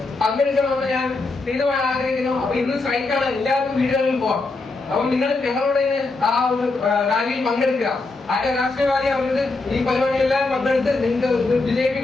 പങ്കെടുക്കണമെന്ന് ഞാൻ തീരുമാനം ആഗ്രഹിക്കുന്നു. അപ്പൊ ഇന്ന് സ്ട്രൈക്കാണ്, എല്ലാവർക്കും വീടുകളിൽ പോകാം. അപ്പം നിങ്ങൾ ഞങ്ങളോട് ആ ഒരു റാലിയിൽ പങ്കെടുക്കുക. ആരുടെ രാഷ്ട്രീയവാദി അവർക്ക് ഈ പരിപാടികളെല്ലാം പങ്കെടുത്ത് നിങ്ങൾക്ക്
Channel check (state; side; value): quieter; right; 3.5 dB